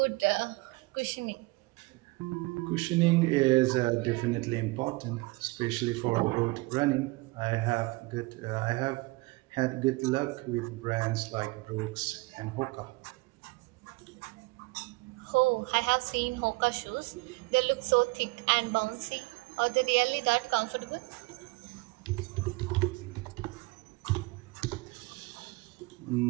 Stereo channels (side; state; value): left; quieter; 24.3 dB